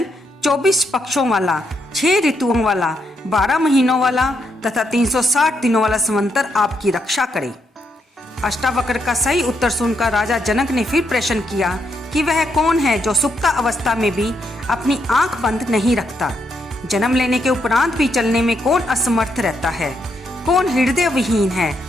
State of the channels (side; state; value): both; normal; correlation 0.78